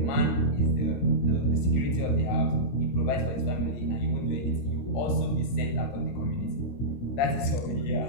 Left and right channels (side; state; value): right; late; 16 ms